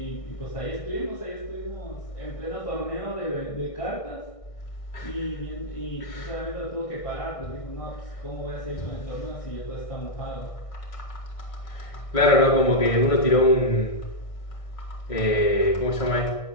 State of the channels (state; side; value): late; right; 1.6 ms